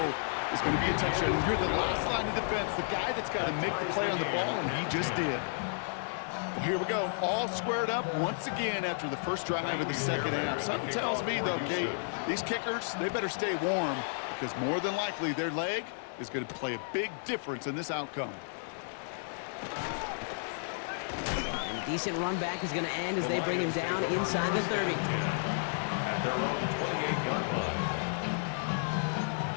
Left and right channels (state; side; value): silent; right; digital silence